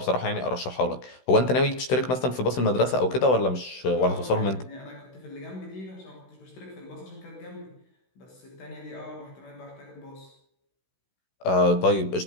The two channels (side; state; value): right; late; 16 ms